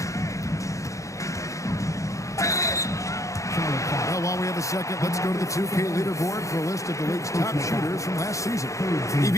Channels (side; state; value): right; late; 0.15 ms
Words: Well, while we have a second, let's go to the 2K leaderboard for a list of the league's top shooters from last season.